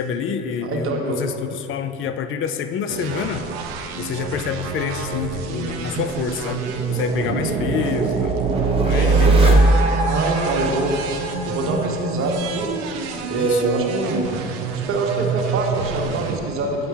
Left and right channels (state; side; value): normal; both; correlation 0.43